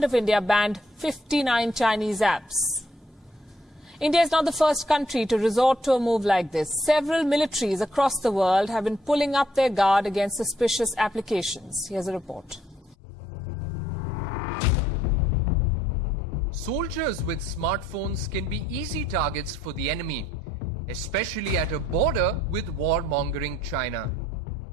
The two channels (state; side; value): normal; both; correlation 0.69